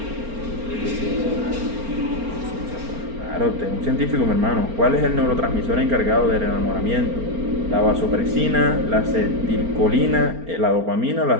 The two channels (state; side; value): late; left; 4.4 ms